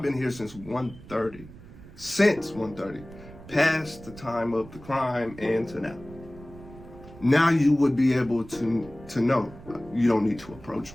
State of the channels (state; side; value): noise; right; rumble, 18 dB below the sound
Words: been here since 1:30. Since 1:30. Past the time of the crime and to now. Now you would be able to know you don't need to approach